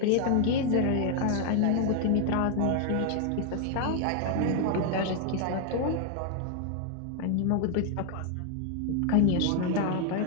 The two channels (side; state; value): both; different; correlation 0.00